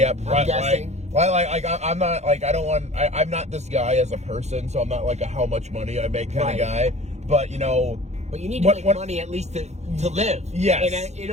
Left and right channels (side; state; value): left; late; 0.32 ms